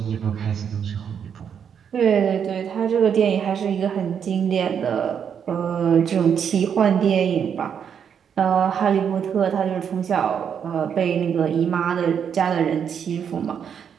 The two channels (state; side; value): quieter; left; 7.7 dB